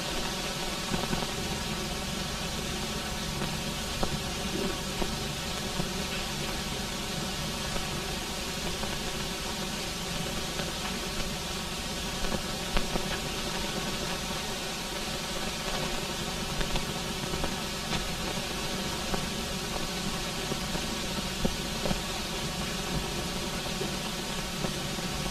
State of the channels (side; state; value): both; identical; correlation 1.00